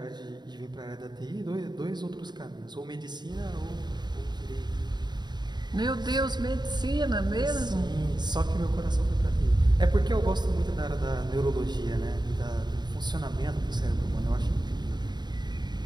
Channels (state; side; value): late; left; 0.21 ms